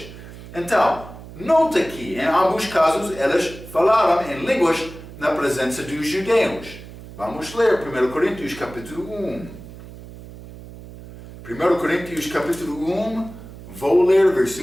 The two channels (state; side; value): noise; right; hum, 16 dB below the sound